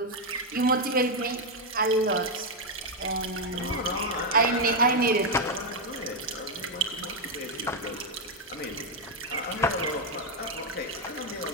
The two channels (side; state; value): both; normal; correlation 0.02